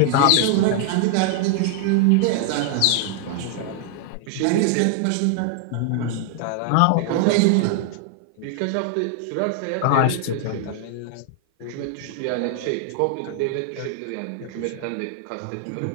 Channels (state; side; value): different; both; correlation 0.00